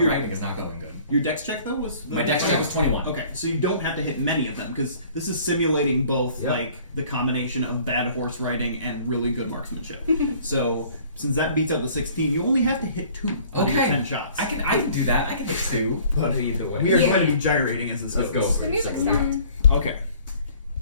writing is not going good. Your dex check though was My dex check was 21. Okay, so you don't have to hit many of them because this is simulating both Yep. like the combination of bad horse riding and really good marksmanship. So since that beats out the 16, you only have to hit 2 out of your Okay. 10 shots. I can do that. I can hit 2. But either way. we are Yeah. going to be gyrating as this Let's go goes. for The it. music So- stopped. Okay,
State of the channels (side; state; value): both; inverted; correlation -0.53